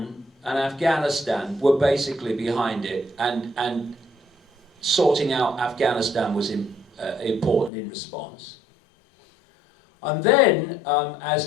and Afghanistan were basically behind it, and sorting out Afghanistan was important in response. And then,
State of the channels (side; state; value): right; drops out; at 7.7 s